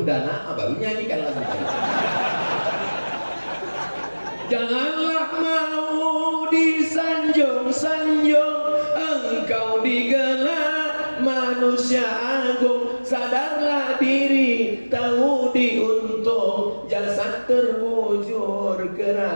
dana, baru nyanyikan lagu tadi. Janganlah mau disanjung-sanjung, engkau digelar manusia agung. Sadarlah diri, tahu diuntung, jasad terbujur,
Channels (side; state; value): both; inverted; correlation -1.00